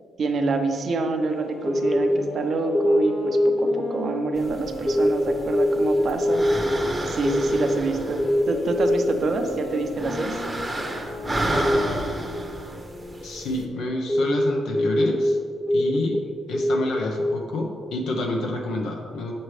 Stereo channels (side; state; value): both; normal; correlation 0.87